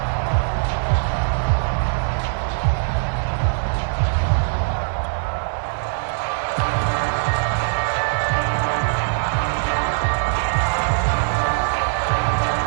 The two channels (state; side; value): silent; left; 65 dB below the other